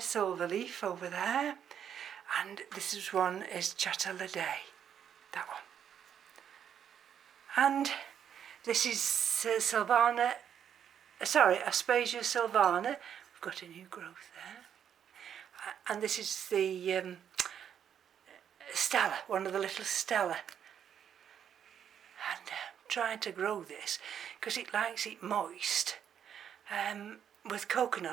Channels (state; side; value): quieter; left; 8.8 dB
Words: over there. And this is one is Chateladay, that one. And this is Aspasia sylvana. We've got a new growth there. And this is the Stella, one of the little Stella. And trying to grow this because it likes it moist with